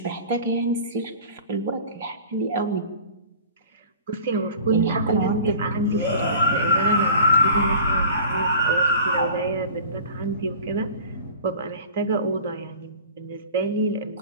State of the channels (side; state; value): both; inverted; correlation -0.42